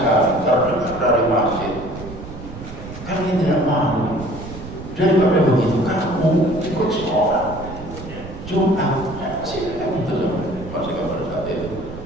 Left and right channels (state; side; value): noise; right; rumble, 12 dB below the sound